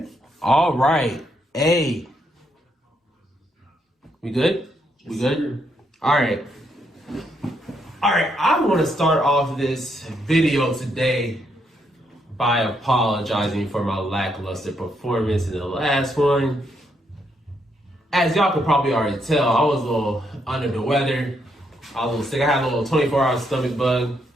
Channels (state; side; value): normal; both; correlation 0.76